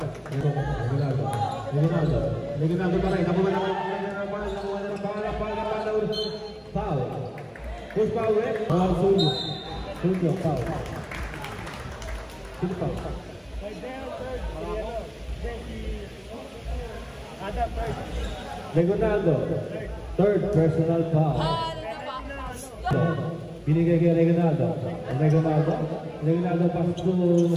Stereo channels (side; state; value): both; identical; correlation 1.00